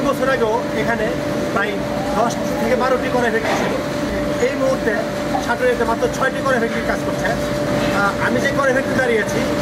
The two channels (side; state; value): both; identical; correlation 1.00